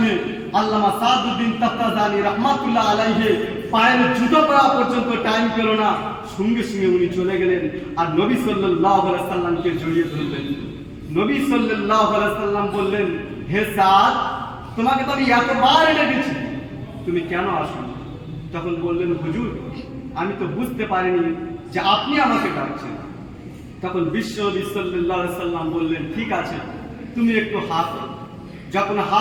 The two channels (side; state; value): both; identical; correlation 1.00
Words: আল্লামা সাআদউদ্দিন তাফতাজানি রাহমাতুল্লাহ আলাইহি পায়ের জুতো পরা পর্যন্ত টাইম পেল না, সঙ্গে সঙ্গে উনি চলে গেলেন আর নবী সাল্লাল্লাহু আলাইহি সাল্লামকে জড়িয়ে ধরলেন। নবী সাল্লাল্লাহু আলাইহি সাল্লাম বললেন, হে সাদ, তোমাকে তো আমি এতবার ডেকেছি, তুমি কেন আসো? তখন বললেন, হুজুর আমি তো বুঝতে পারিনি যে আপনি আমাকে ডাকছেন। তখন বিশ্বনবী সাল্লাল্লাহু আলাইহি সাল্লাম বললেন, ঠিক আছে তুমি একটু হা করো। যখন